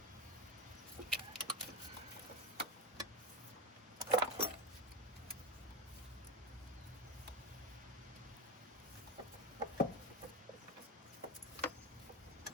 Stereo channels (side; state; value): both; normal; correlation 0.18